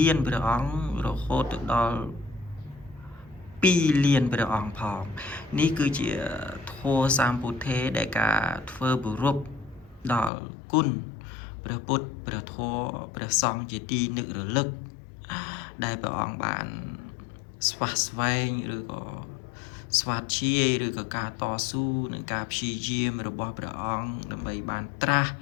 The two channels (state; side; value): drops out; right; at 10.3 s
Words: ានព្រះអង្គរហូតទៅដល់2លានព្រះអង្គផងនេះគឺជាធម៌សម្ពុទ្ធេដែលការធ្វើគោរពដល់គុណព្រះពុទ្ធព្រះធម៌ព្រះសង្ឃជាទីនឹករលឹកដែលព្រះអង្គបានស្វះស្វែងឬក៏ស្វាធ្យាយឬក៏ការតស៊ូនឹងការព្យាយាមរបស់ព្រះអង្គដើម្បីបានត្រាស់